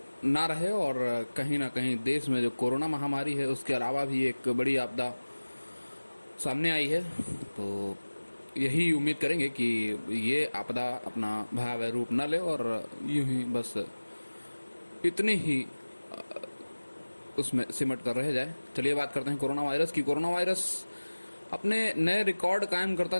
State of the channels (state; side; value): inverted; both; correlation -1.00